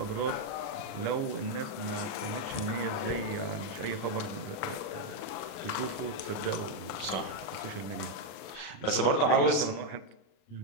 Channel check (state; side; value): late; right; 37 ms